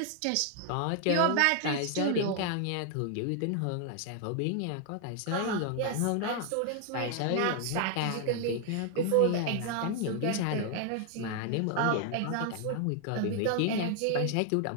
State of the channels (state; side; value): different; both; correlation 0.00